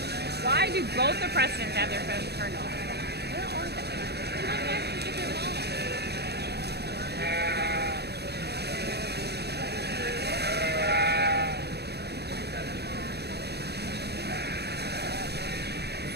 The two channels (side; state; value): left; late; 0.48 ms